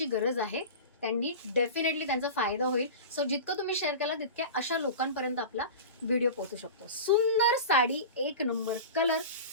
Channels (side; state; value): both; inverted; correlation -0.31